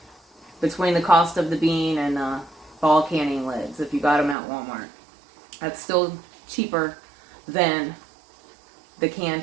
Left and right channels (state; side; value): drops out; left; at 4.4 s